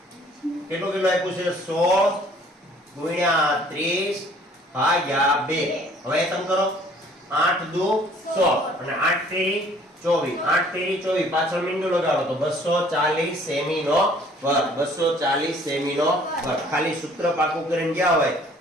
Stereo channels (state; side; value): normal; both; correlation 0.56